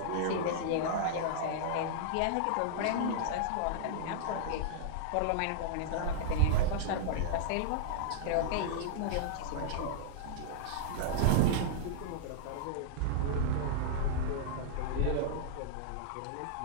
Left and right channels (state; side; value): different; both; correlation -0.02